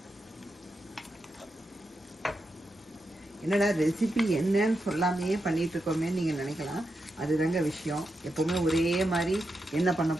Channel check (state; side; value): normal; both; correlation 0.86